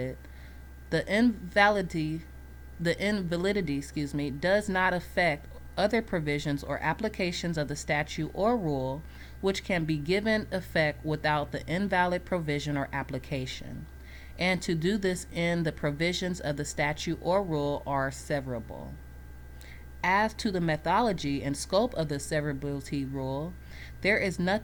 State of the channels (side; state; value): both; identical; correlation 1.00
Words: the invalidity does not affect other provisions or applications of the statute or rule which can be given effect without the invalid provision or application. And to do this in the provisions of the statute or rule are severable. As to the methodology and scope of the severability rule, there is